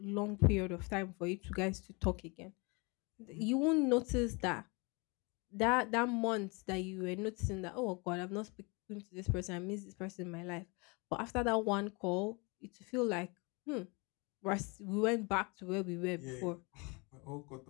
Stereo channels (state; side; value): quieter; right; 29.4 dB